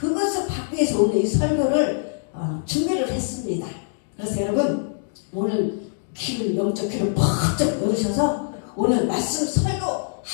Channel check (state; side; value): silent; right; digital silence